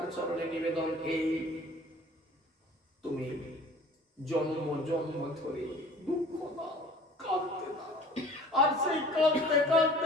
চরণে নিবেদন এই, তুমি জন্ম জন্ম ধরে দুঃখ দাও, কাঁদতে দাও, আর সেই কাঁদতে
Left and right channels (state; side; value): normal; both; correlation 0.47